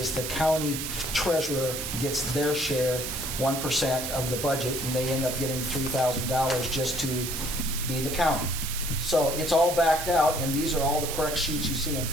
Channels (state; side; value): noise; right; hiss, 5 dB below the sound